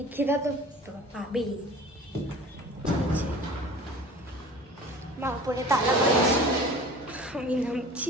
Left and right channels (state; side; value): normal; both; correlation 0.42